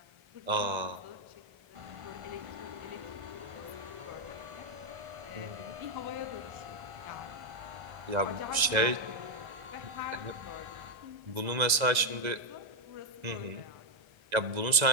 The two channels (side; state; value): left; late; 1.3 ms